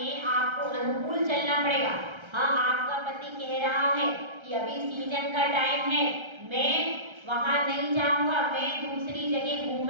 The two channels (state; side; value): late; left; 1.3 ms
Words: आपको अनुकूल चलना पड़ेगा। हाँ, आपका पति कह रहा है कि अभी सीजन का टाइम है, मैं वहां नहीं जाऊंगा, मैं दूसरी जगह